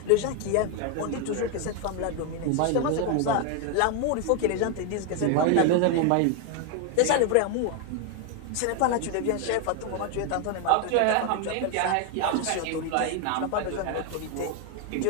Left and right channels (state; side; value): different; both; correlation 0.01